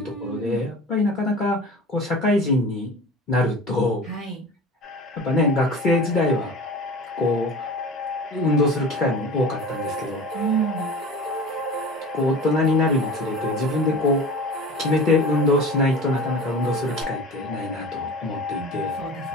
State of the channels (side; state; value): both; normal; correlation 0.36